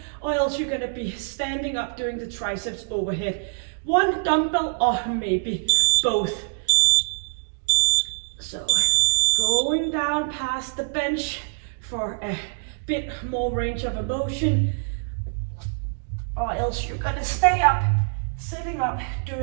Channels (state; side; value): silent; left; digital silence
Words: or else you're gonna be standing up doing the triceps overhead. 1 dumbbell or maybe both. So going down past the bench for a bit more range of motion, or else you're gonna stay up, sitting up,